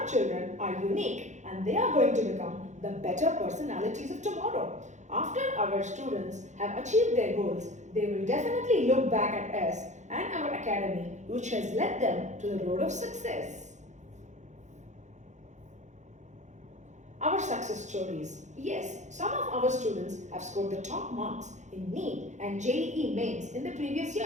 children are unique and they are going to become the better personalities of tomorrow. After our students have achieved their goals, they will definitely look back at us and our academy, which has led them to the road of success. Our success stories. Yes, some of our students have scored the top marks in NEET and JEE mains in the previous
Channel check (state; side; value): late; left; 0.34 ms